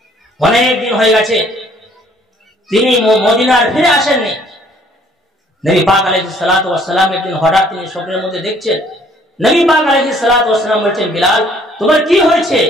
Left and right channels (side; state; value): both; normal; correlation 0.60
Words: অনেক দিন হয়ে গেছে তিনি মদিনার ফিরে আসেননি। নবী পাক আলাইহিস সালাতু ওয়াস সালাম একদিন হঠাৎ তিনি স্বপ্নের মধ্যে দেখছেন, নবী পাক আলাইহিস সালাতু ওয়াস সালাম বলছেন, বিলাল তোমার কি হয়েছে,